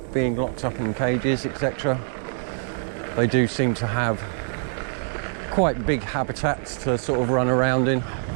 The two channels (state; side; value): silent; left; 62 dB below the other